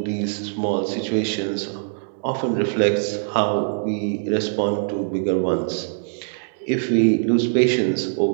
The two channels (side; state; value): left; silent; digital silence